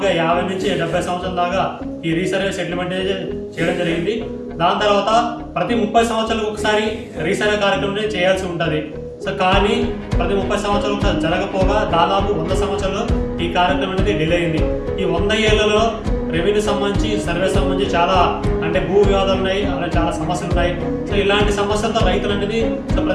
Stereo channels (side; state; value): both; identical; correlation 1.00